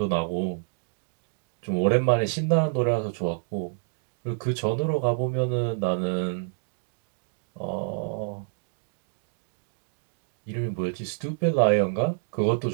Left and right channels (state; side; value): silent; left; digital silence